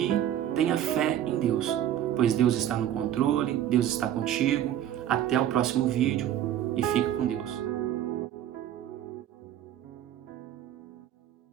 tenha fé em Deus, pois Deus está no controle, Deus está contigo. Até o próximo vídeo e fique com Deus.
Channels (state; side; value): quieter; left; 11.2 dB